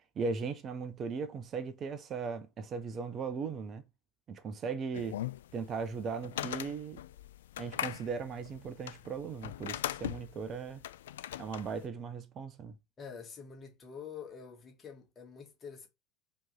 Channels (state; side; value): normal; both; correlation 0.32